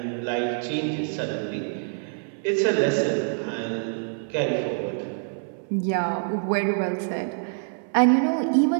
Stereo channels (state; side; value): silent; left; 61 dB below the other